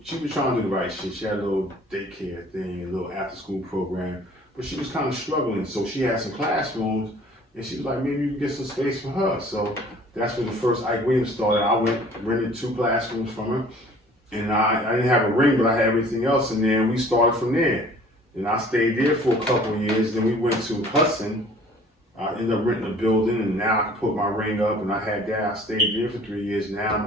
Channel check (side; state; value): both; normal; correlation 0.51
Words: trying to do the right shit. She had a little daycare thing, a little after school program, but she was kind of struggling. So she had some classrooms, and she was like, maybe you can get some space for her. So that's when the first Ike Williams started. I rented 2 classrooms from her, and I didn't have a ring, but I had everything else in there, and we started from there. And I stayed there for a couple of years. Then we went to Hudson. I ended up renting a building, and now I can put my ring up, and I had that. I stayed there for 3 years. Now